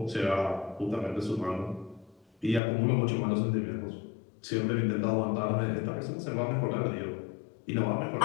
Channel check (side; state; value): right; drops out; at 2.6 s